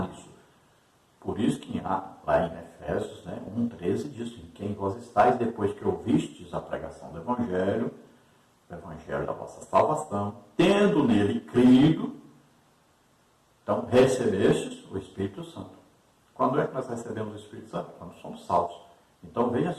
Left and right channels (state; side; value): identical; both; correlation 1.00